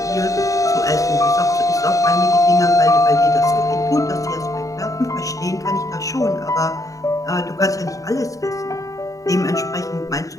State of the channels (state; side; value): late; right; 0.16 ms